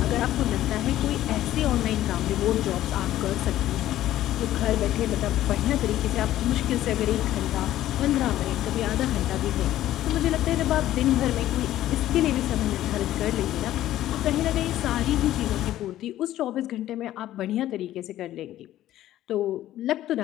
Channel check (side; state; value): right; quieter; 13.6 dB